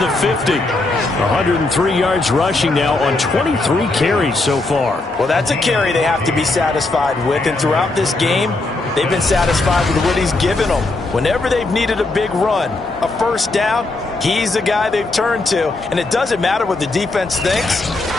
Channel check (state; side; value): quieter; right; 3.1 dB